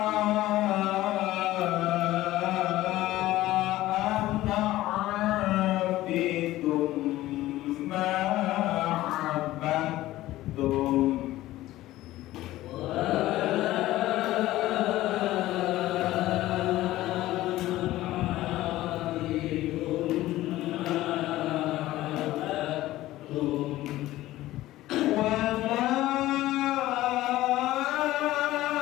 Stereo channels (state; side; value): quieter; right; 15.9 dB